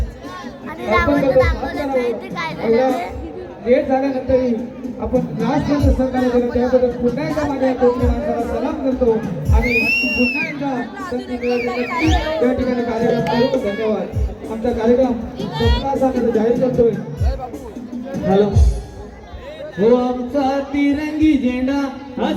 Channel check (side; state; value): both; identical; correlation 1.00